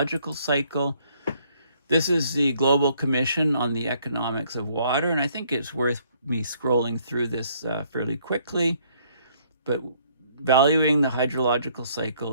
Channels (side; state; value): both; inverted; correlation -0.66